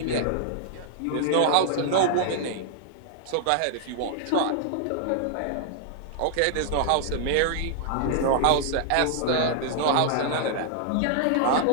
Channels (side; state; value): both; different; correlation -0.01